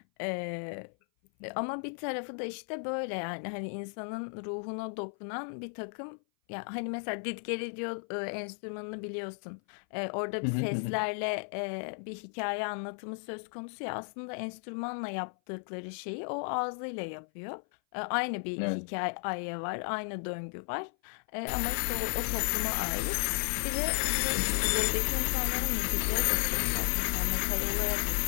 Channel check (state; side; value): silent; right; 55 dB below the other